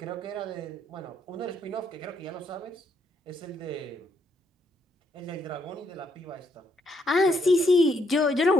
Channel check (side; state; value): both; normal; correlation 0.73